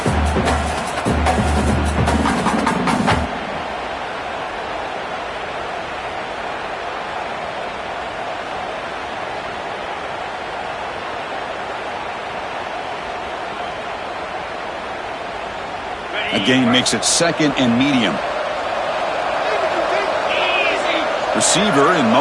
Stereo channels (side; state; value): both; identical; correlation 1.00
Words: Again, makes it 2nd and medium. Receiver in